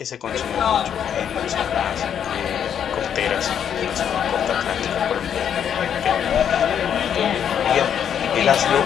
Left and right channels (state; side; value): quieter; right; 8.7 dB